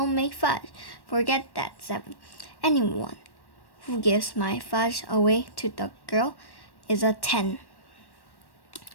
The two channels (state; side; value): late; right; 1.1 ms